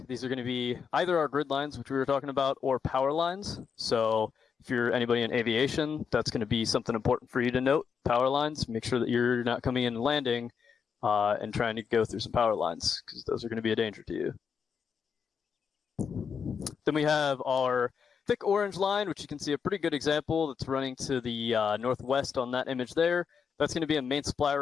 These are going to be either our grid lines, which we were talking about, or power lines. So if you're anybody in aviation, that's going to be something important for you to note. Power lines, make sure that you're not coming in and landing and trying to go through some power lines, because those are going to be a danger to you. Then we have our thick orange line, which you can see a pretty good example that's running to the northwest on that image there. That's going to be a main supply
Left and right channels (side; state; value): right; quieter; 6.5 dB